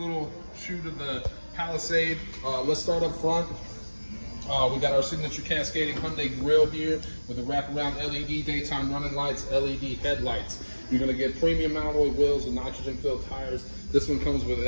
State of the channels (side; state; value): both; inverted; correlation -1.00